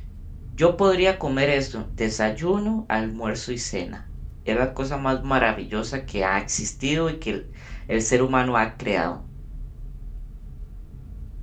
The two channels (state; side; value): identical; both; correlation 1.00